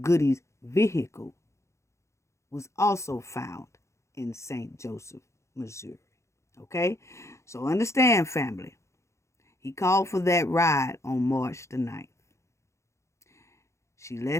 Goodie's vehicle was also found in St. Joseph, Missouri. Okay? So understand, family. He called for that ride on March the 9th. She let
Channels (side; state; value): right; late; 0.14 ms